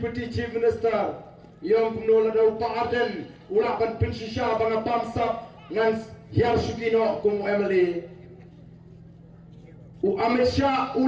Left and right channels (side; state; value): both; identical; correlation 1.00